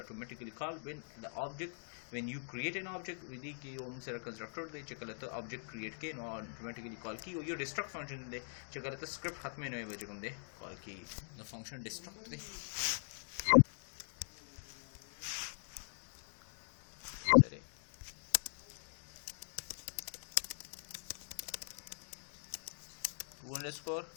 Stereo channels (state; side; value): silent; right; digital silence